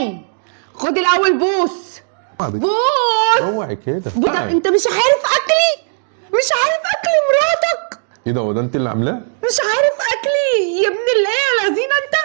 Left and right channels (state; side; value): silent; left; digital silence